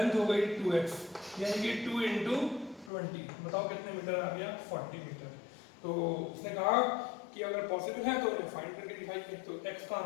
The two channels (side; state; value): right; drops out; at 2.9 s